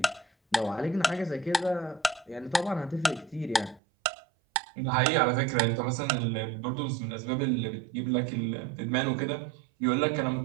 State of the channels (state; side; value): drops out; left; at 3.8 s